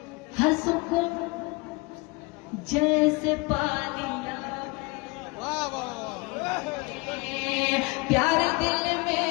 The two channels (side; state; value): right; quieter; 26.6 dB